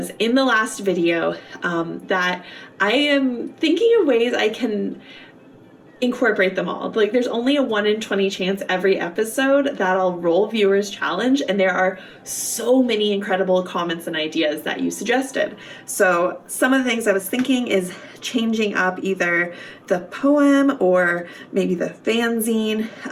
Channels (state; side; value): identical; both; correlation 1.00